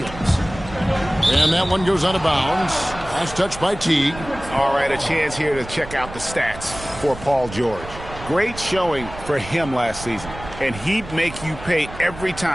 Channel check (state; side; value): noise; right; rumble, 13 dB below the sound